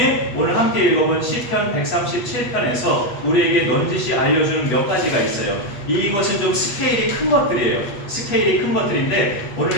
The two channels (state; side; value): late; right; 8.3 ms